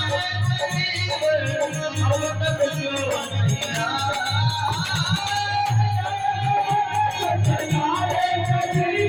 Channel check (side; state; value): both; identical; correlation 1.00